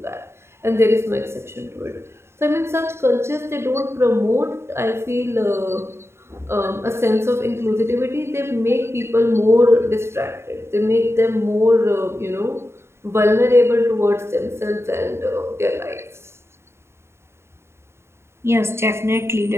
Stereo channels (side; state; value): left; late; 0.12 ms